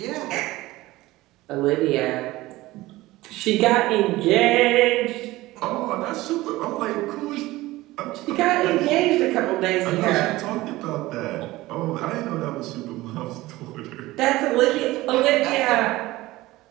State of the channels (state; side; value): quieter; left; 18.3 dB